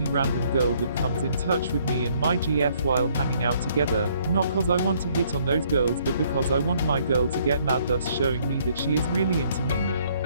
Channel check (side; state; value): both; inverted; correlation -0.65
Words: random girl that comes in touch with me and my GF while hanging out together, not cause I want to hit on those girls, but because I want my girl to get mad, thus showing me that she is really into me.